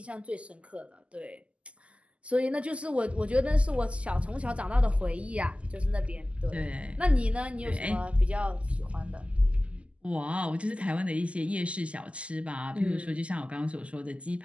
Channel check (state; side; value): late; left; 0.059 ms